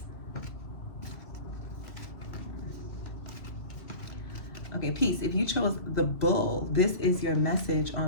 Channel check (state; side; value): late; right; 2.2 ms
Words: Okay, peace. If you chose the bull, this is your message